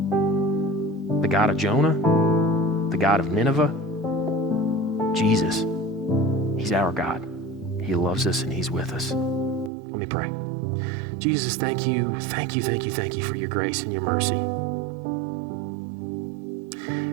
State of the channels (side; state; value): left; drops out; at 9.7 s